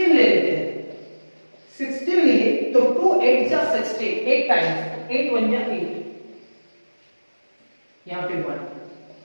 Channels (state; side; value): inverted; both; correlation -1.00